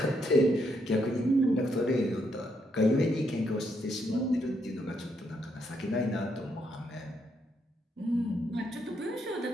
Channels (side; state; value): both; normal; correlation 0.76